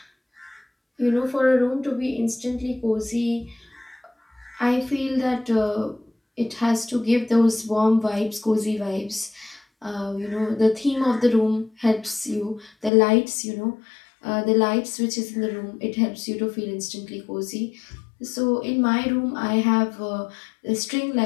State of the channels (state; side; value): drops out; right; at 12.9 s